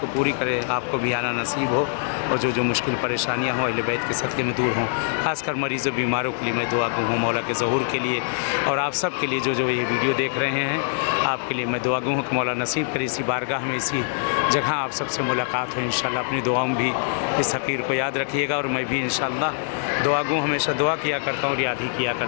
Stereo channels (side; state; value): right; silent; digital silence